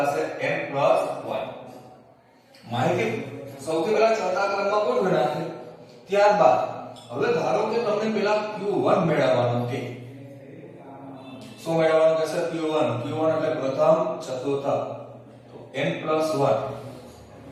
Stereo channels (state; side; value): identical; both; correlation 1.00